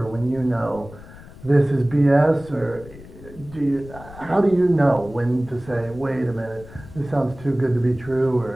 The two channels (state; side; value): noise; left; rumble, 18 dB below the sound